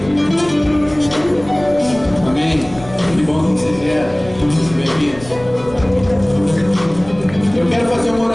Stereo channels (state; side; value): noise; left; rumble, 18 dB below the sound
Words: Amém. Que bom que você vieram. Bem-vindos. Eu quero fazer uma